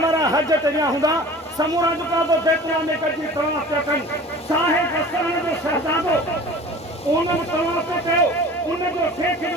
वारा हज ते विया हूंदा समूरा जेका तो बैतुल्लाह में गड्डी तवाफ पिया कनि साहिब हसन जो शहजादो उन्हनि तवाफ कयो उनजो शेख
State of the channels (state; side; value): normal; both; correlation 0.42